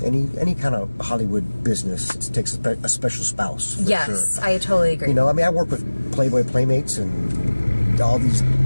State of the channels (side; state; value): both; inverted; correlation -1.00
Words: Any kind of Hollywood business, it takes a special spouse. Yes, sure. I totally agree. You know, I mean, I work with Playboy Playmates and all these